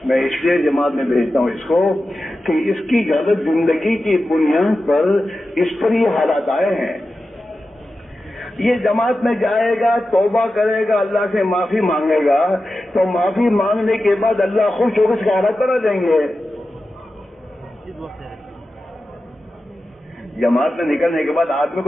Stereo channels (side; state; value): both; normal; correlation 0.92